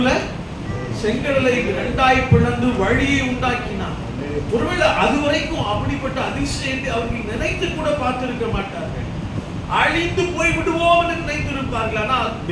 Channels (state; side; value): identical; both; correlation 1.00